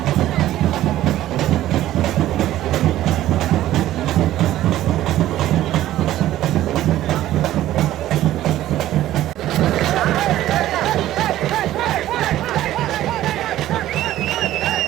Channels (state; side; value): quieter; left; 13.9 dB